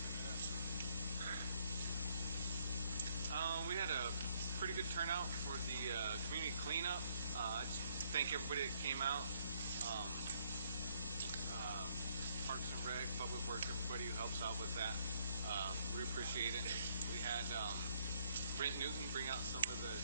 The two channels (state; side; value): inverted; both; correlation -0.68